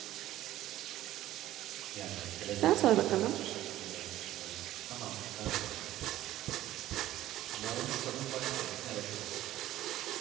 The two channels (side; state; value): left; quieter; 14.3 dB